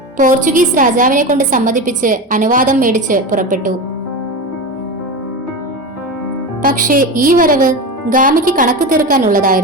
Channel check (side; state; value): both; normal; correlation 0.23